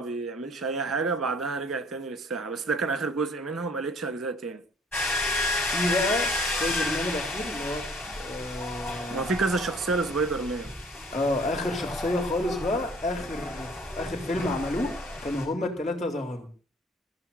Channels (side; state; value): both; normal; correlation 0.55